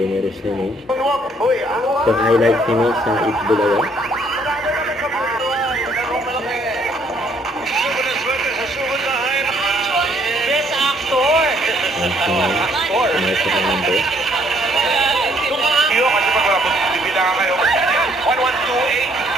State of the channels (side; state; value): both; normal; correlation 0.66